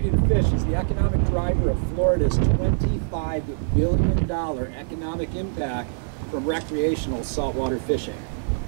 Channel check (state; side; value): silent; left; digital silence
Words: to fish is the economic driver of Florida's $25 billion economic impact from recreational saltwater fishing.